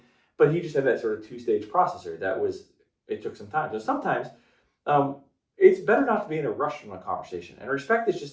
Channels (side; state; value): both; identical; correlation 1.00